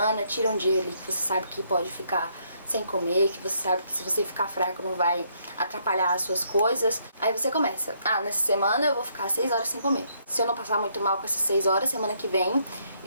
tira um dia ali que você sabe que pode ficar sem comer, que você sabe que se você ficar fraco não vai atrapalhar as suas coisas. Aí você começa, nessa semana eu vou ficar 6 horas sem comer. Se eu não passar muito mal com essas 6 horas, semana que vem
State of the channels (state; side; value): inverted; both; correlation -0.71